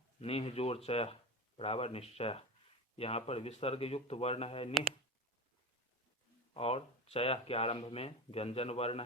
निह जोड़ चयः बराबर निश्चयः। यहाँ पर विसर्ग युक्त वर्ण है निह और चयः के आरंभ में व्यंजन वर्ण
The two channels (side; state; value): both; normal; correlation 0.26